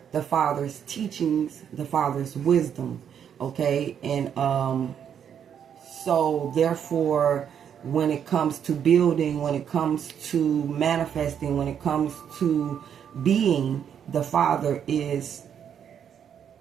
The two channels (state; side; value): quieter; left; 8.5 dB